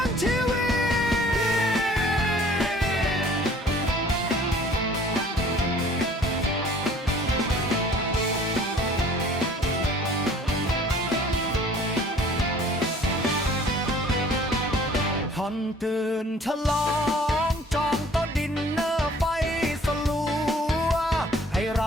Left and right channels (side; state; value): both; normal; correlation 0.53